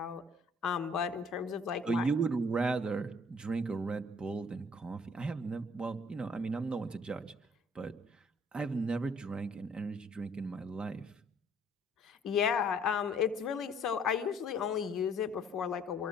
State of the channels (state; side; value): normal; both; correlation 0.59